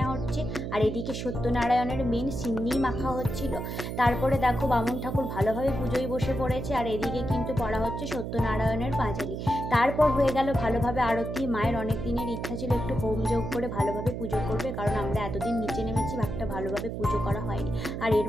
হচ্ছে। আর এদিকে সত্যনারায়ণের মেন সিন্নি মাখা হচ্ছিল। তারপরে দেখো বামুন ঠাকুর ভালোভাবে পুজোয় বসে পড়েছে, আর এদিকে কিন্তু পড়া হচ্ছে সত্যনারায়ণের পাঁচালি। তারপর হয়ে গেল ভালোভাবে আরতি। মায়ের অনেক দিনের ইচ্ছা ছিল একটু হোম যোগ করে ভালোভাবে পুজো করবে, কারণ আমরা এতদিন নিচে নেমেছি, একটা ভালোভাবে পুজো করা হয়নি। আর এর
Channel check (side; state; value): right; noise; hum, 5 dB below the sound